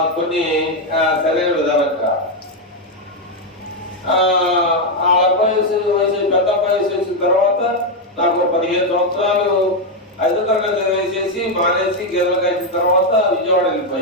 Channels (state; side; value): normal; both; correlation 0.03